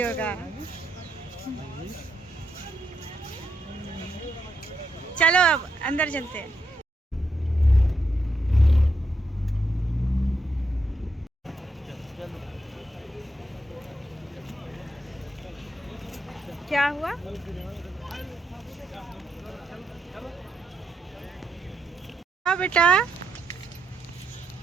चलो अब अंदर चलते हैं। क्या हुआ? हाँ बेटा,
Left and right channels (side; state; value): both; normal; correlation 0.80